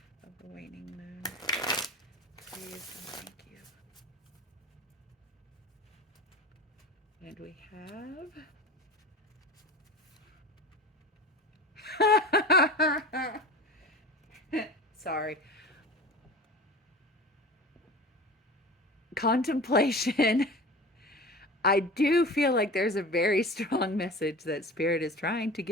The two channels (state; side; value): normal; both; correlation 0.35